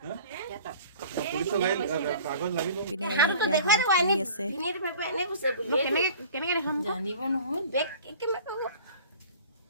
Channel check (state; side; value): inverted; both; correlation -0.44